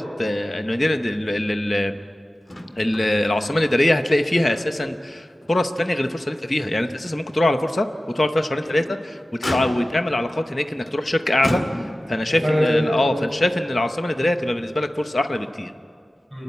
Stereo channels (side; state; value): both; normal; correlation 0.96